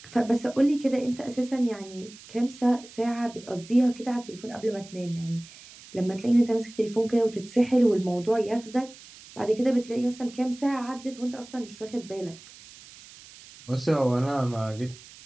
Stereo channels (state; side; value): noise; right; hiss, 20 dB below the sound